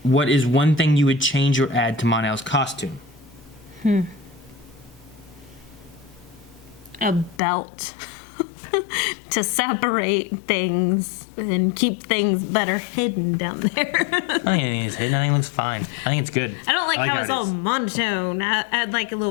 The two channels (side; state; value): right; drops out; at 7.4 s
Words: what is one thing you would change or add to Mon-El's costume? A belt. To separate things and keep things better hidden down there. I don't think anything is hidden. I think it looks fine. I think it's good. I don't like how it's it all is. monotone. I'd like a